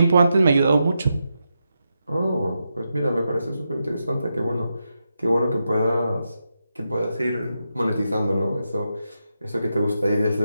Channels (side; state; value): both; inverted; correlation -0.86